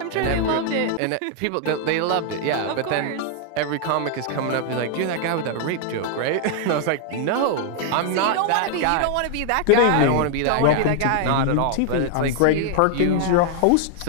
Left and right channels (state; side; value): different; both; correlation 0.00